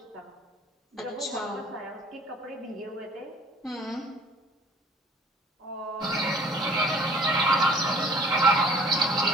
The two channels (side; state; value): both; normal; correlation 0.52